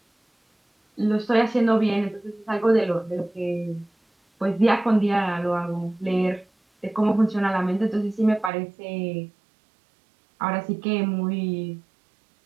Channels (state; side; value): drops out; left; at 8.5 s